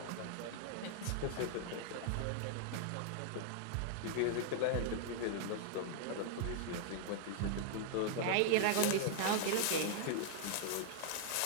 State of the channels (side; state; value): both; different; correlation -0.01